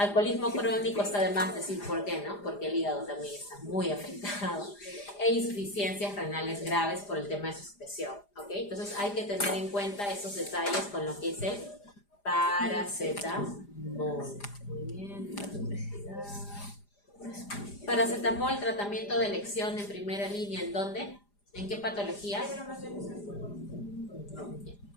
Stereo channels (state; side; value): late; right; 4.9 ms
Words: crónico, está de más decir por qué, ¿no? Porque el hígado también está muy afectado. E insuficiencias renales graves por el tema de su secreción, ¿ok? Entonces hay que tener en cuenta esos detalles con lo que es el paracetamol. Muy bien. Paracetamol, tratamiento de elección en primera línea, ¿en dónde? ¿En qué patologías?